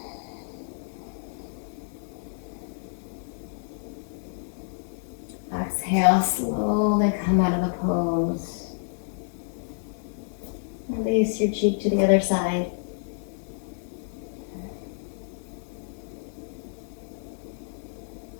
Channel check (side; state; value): right; silent; digital silence